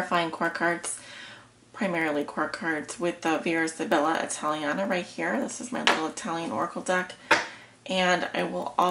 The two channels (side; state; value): both; identical; correlation 1.00